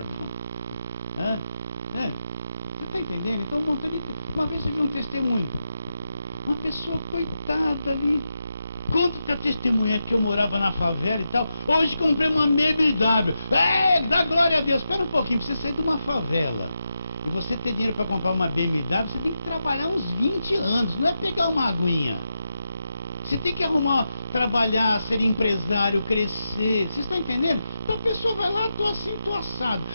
Você está entendendo? Então, uma vez eu vi um testemunho, uma pessoa coitada ali, conta que a testemunha que eu morava na favela e tal, hoje comprei uma BMW, dá glória a Deus. Espera um pouquinho, pra você sair de uma favela e você ter dinheiro para comprar uma BMW, você tem que trabalhar uns 20 anos, não é pegar uma aguinha. Você tem que trabalhar, ser empresário, crescer. Vocês estão entendendo? Então a pessoa vai lá, tô assim, tô assado.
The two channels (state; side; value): inverted; both; correlation -0.87